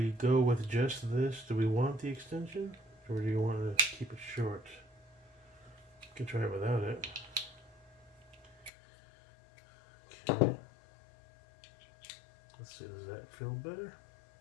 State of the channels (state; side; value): drops out; right; at 8.7 s